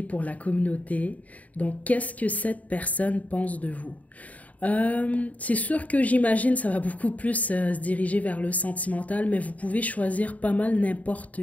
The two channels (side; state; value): right; late; 0.071 ms